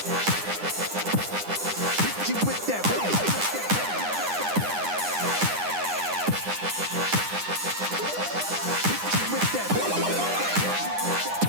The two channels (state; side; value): late; left; 9.9 ms